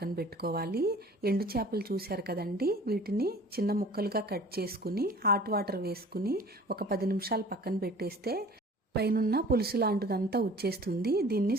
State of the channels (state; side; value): normal; both; correlation 0.47